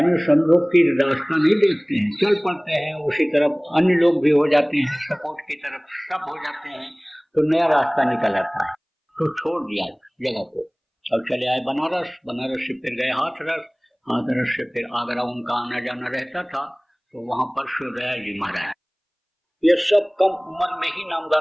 समझो की रास्ता नहीं देखते हैं, चल पड़ते हैं उसी तरफ, अन्य लोग भी हो जाते हैं सपोर्ट की तरफ, सब हो जाते हैं, तो नया रास्ता निकल आता है। तो छोड़ दिया जगह को, अब चले आए बनारस, बनारस से फिर गए हाथरस, हाथरस से फिर आगरा उनका आना जाना रहता था, तो वहां पर सूर्यदयाल जी महाराज, ये सब कम उम्र में ही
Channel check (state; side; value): identical; both; correlation 1.00